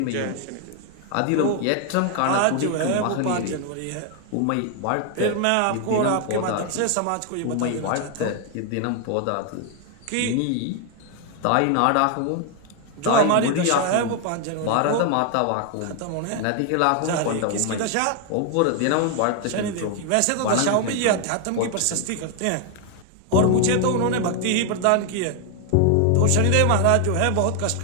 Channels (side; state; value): both; different; correlation 0.00